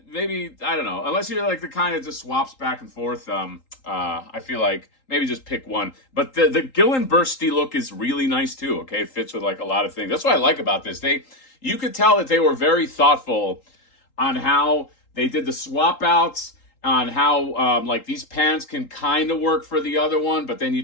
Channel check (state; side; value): late; right; 3.8 ms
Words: maybe, I don't know, unless you're like the kind that just swaps back and forth. I feel like maybe just pick one. But the Gullinbusrti look is really nice too. Okay, it fits with like a lot of things. That's what I like about this. You could tell that they were very thoughtful on how they did the swap outs, on how like these pants can kind of work for the other one, but then you